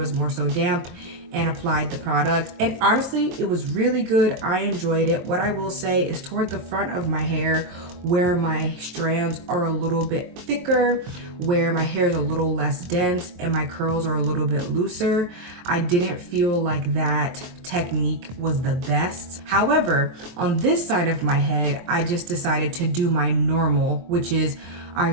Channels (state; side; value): late; left; 23 ms